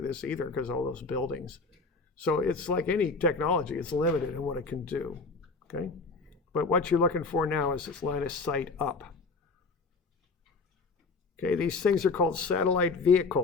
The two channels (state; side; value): quieter; right; 4.0 dB